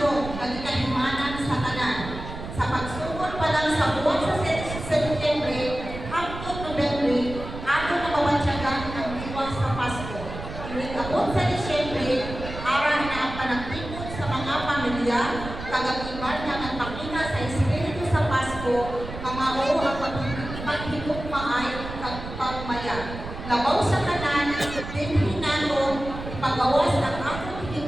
ng ikahimanan sa tanan. Sa pagsugod pa lang sa buwan sa Setyembre, hangtod Nobyembre, ato na mawatyagan ang diwa sa Pasko. Inikabot sa Disyembre, araw na ang panagtipon sa mga pamilya, kagagiban na nagpakita sa Espiritu sa Pasko, mga o ang paghigugmaay kag pagmaya. Labaw sa kanan, dinhi nato ipagawas ang atong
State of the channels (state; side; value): noise; right; rumble, 9 dB below the sound